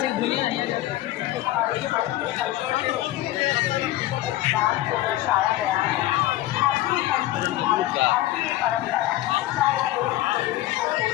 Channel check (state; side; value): quieter; right; 15.4 dB